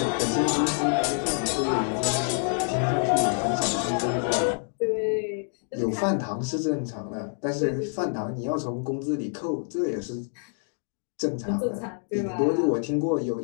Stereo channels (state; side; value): silent; right; 56 dB below the other